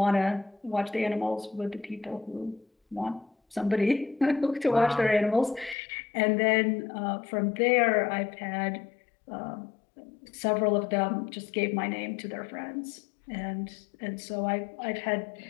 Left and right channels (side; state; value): right; drops out; at 5.8 s